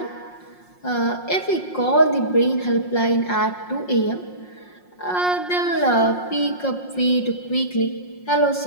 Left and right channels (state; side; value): late; right; 5.6 ms